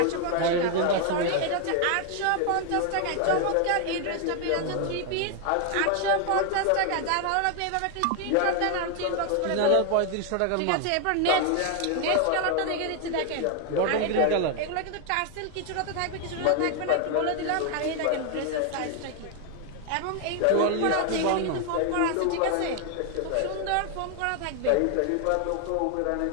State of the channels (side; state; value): both; different; correlation 0.01